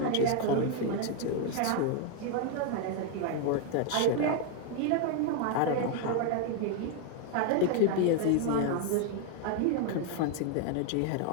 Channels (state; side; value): different; both; correlation 0.00